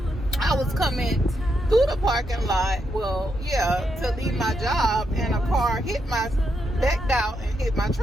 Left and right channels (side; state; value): both; normal; correlation 0.81